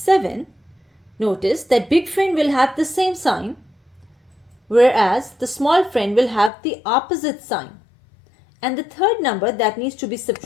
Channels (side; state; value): right; drops out; at 6.5 s